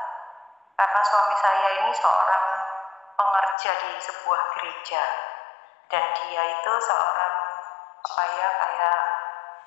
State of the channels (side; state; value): right; drops out; at 3.6 s